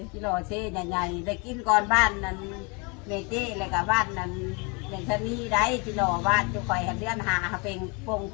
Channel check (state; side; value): quieter; right; 31.3 dB